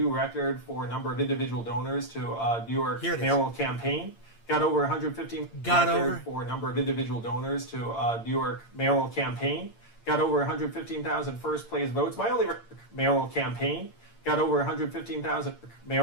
record for a number of individual donors to New York mayoral campaign. got over 115 record for a number of individual donors to New York mayoral campaign, got over 115,000 first place votes. My only mayoral campaign got over 115,000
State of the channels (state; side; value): late; right; 8.7 ms